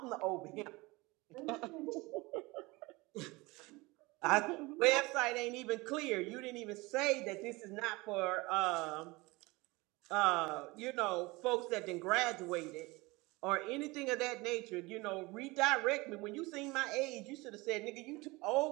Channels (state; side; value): quieter; left; 23.2 dB